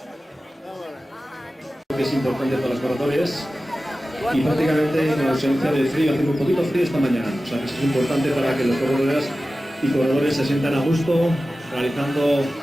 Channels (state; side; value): normal; both; correlation 0.95